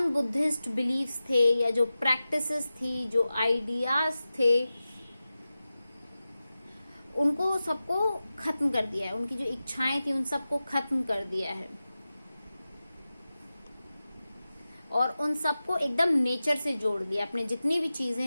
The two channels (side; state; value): both; inverted; correlation -0.94